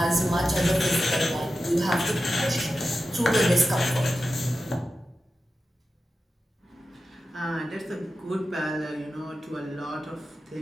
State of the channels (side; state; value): both; normal; correlation 0.92